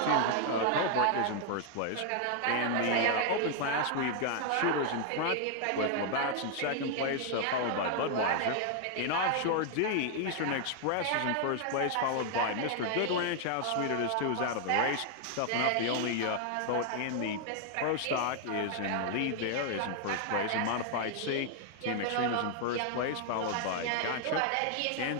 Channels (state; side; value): different; both; correlation 0.00